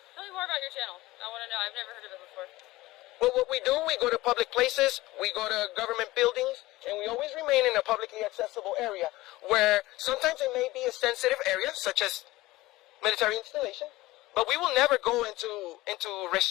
tell me more about your channel. I want to know. I've never heard of it before. Well, what we do, we go to public places, we go to government buildings, and we always remain in a publicly accessible area where sometimes it may be a sensitive area, such as military installation, but we will never go into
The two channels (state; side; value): quieter; right; 18.8 dB